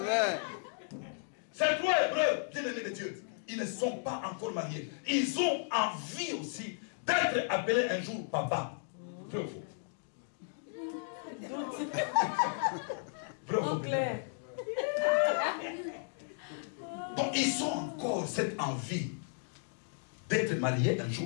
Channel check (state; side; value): silent; right; digital silence